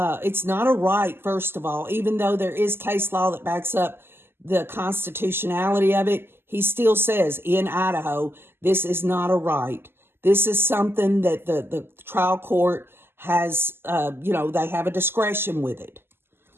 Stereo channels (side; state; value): left; late; 0.11 ms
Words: not a right, first of all, even though there is case law that backs up the constitutionality of it. He still says in Idaho, this is not a right. This is something that the trial court has, they have a discretion with it.